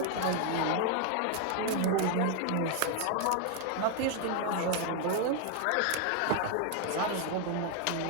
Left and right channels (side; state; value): both; different; correlation 0.00